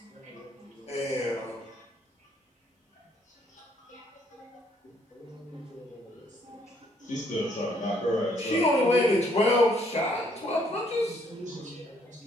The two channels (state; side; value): normal; both; correlation 0.67